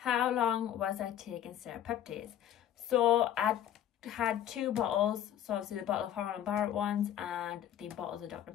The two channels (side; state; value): right; quieter; 10.8 dB